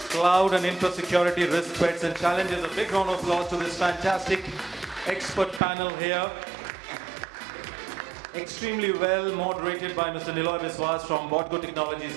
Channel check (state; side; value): drops out; left; at 5.6 s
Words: Cloud and infra security, risk, threats, and challenges. A big round of applause to this fantastic expert panel here. Extremely well moderated by Mr. Niloy Biswas from Botgo Technologies